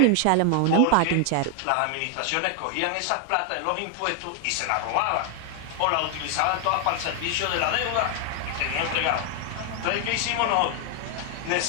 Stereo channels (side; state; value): both; different; correlation 0.00